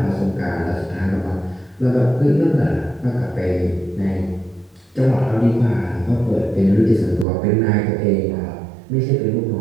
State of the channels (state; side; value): drops out; left; at 7.2 s